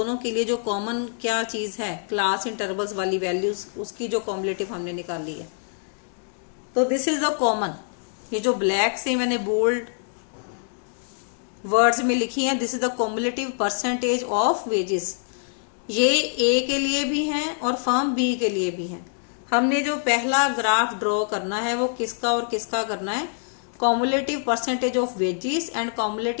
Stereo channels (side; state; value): right; silent; digital silence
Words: के लिए जो कॉमन क्या चीज है, क्लास इंटरवल्स वाली वैल्यूज, उसकी जो कॉम्युलेटिव हमने निकाली है। तो दिस इज द कॉमन, ये जो ब्लैक से मैंने बोल्ड वर्ड्स में लिखी है, this is the cumulative percentage of wages. ये ए के लिए भी है और फर्म बी के लिए भी है। हमने जो पहला ग्राफ ड्रॉ करना है वो किसका और किसका करना है, cumulative percentage of wages and